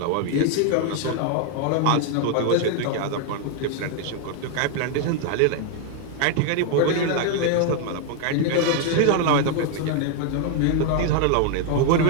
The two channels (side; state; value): both; different; correlation 0.00